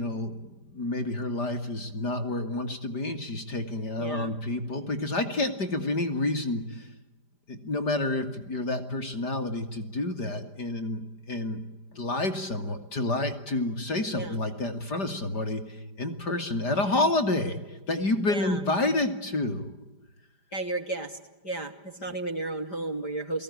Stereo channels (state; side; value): late; right; 5.0 ms